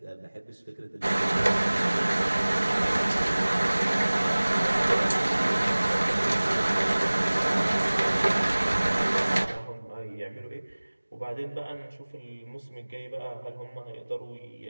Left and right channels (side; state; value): both; inverted; correlation -1.00